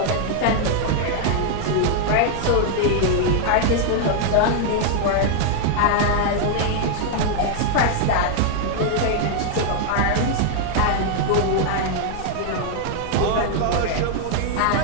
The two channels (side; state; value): both; different; correlation 0.00